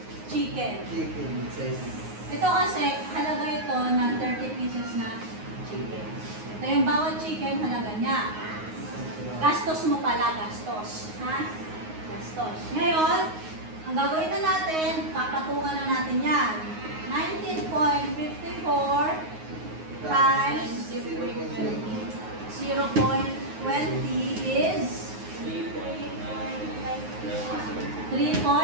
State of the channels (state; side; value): late; left; 9.5 ms